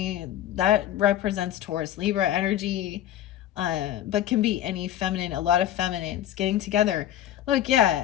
that represents Taurus, Libra energy, but can be any feminine, a lot of feminines getting together. Look, yeah,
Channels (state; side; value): quieter; right; 11.8 dB